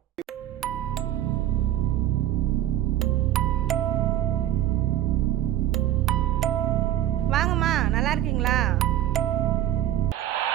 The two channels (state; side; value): quieter; left; 12.6 dB